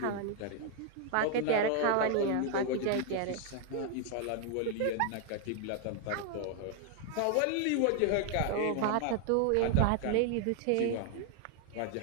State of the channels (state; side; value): different; both; correlation 0.00